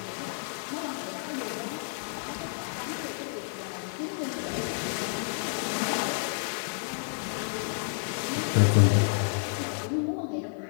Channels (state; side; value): silent; right; digital silence